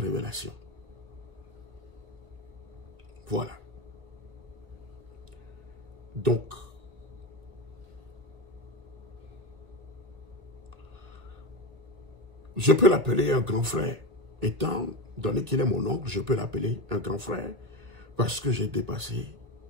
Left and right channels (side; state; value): left; late; 2.0 ms